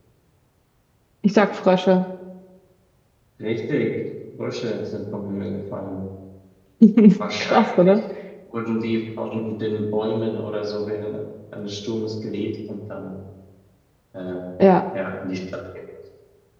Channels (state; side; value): identical; both; correlation 1.00